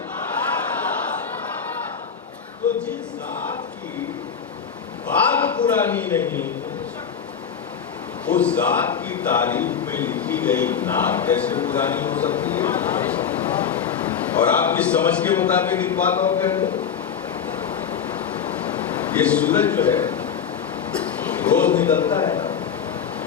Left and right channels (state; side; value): quieter; right; 7.4 dB